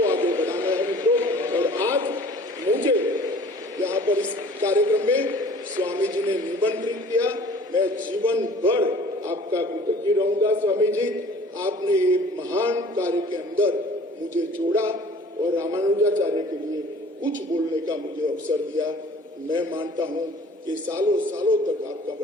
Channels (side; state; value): both; normal; correlation 0.49